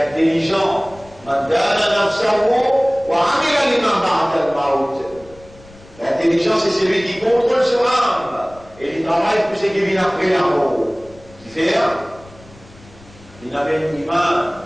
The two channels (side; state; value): left; noise; rumble, 24 dB below the sound